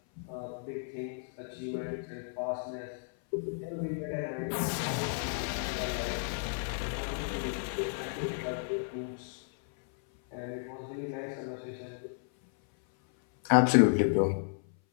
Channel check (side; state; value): right; silent; 56 dB below the other